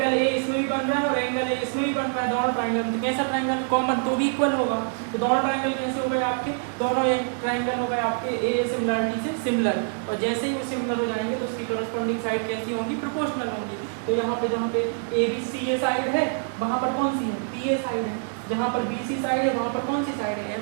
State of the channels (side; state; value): left; silent; 58 dB below the other